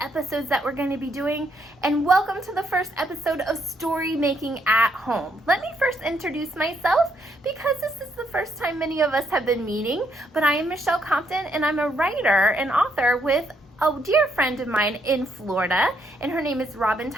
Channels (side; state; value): both; normal; correlation 0.74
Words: that we're going to be doing. And welcome to the first episode of Story Making at Home. Let me first introduce myself because this is the first time many of us have been meeting, but I am Michelle Compton and I'm a writer and author with a dear friend of mine in Florida, and her name is Robin